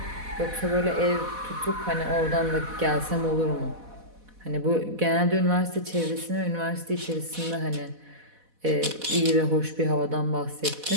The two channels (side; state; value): left; late; 4.1 ms